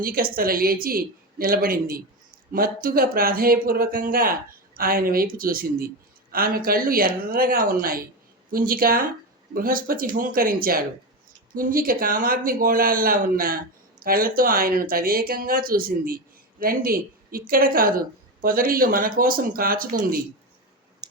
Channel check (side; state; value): both; normal; correlation 0.17